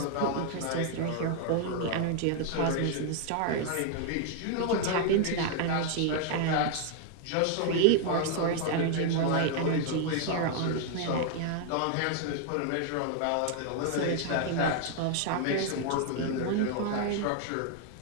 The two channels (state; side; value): different; both; correlation 0.00